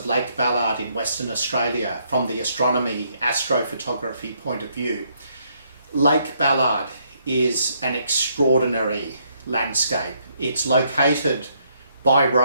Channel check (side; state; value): both; inverted; correlation -0.72